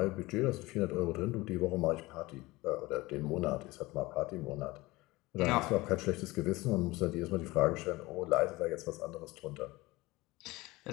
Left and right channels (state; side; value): quieter; right; 20.8 dB